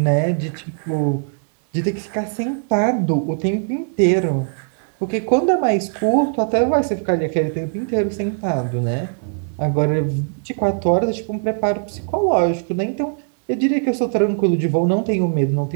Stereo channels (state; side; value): silent; left; digital silence